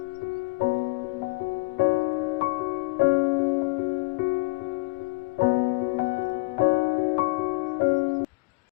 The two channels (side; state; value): right; quieter; 27.2 dB